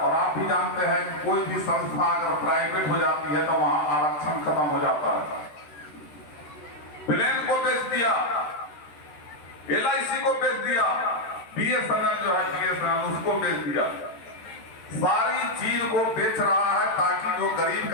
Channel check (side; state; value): right; late; 13 ms